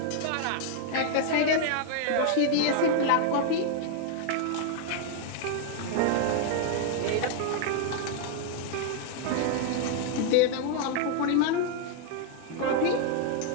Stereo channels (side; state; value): both; different; correlation 0.00